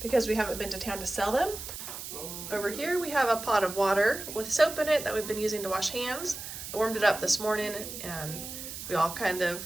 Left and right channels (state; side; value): noise; right; hiss, 9 dB below the sound